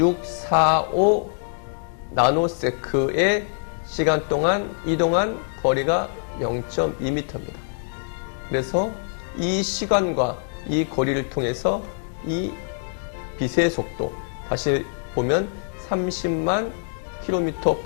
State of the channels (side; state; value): right; silent; 63 dB below the other